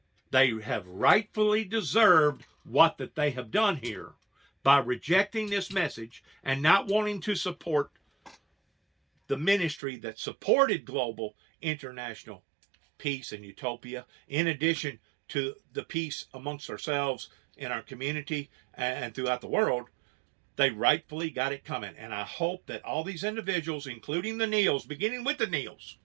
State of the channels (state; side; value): drops out; left; at 9.8 s